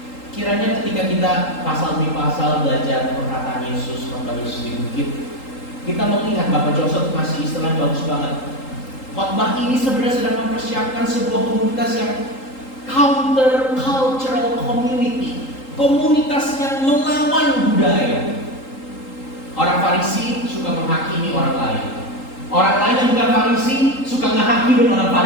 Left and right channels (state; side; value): late; right; 3.8 ms